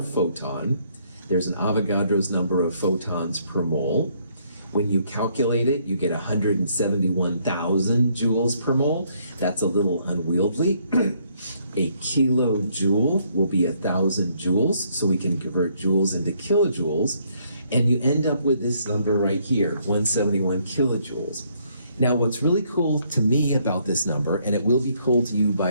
photon, there's an Avogadro's number of photons per mole. When you calculate it, you get 171,000 joules per mole. That's a little unwieldy. A kilojoule will be 1,000 joules, so we can convert joules into kilojoules, and you end up with this number right here, 171 kilojoules. Now, what's really cool to me about this number, and it will be cool to you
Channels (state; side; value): inverted; both; correlation -0.69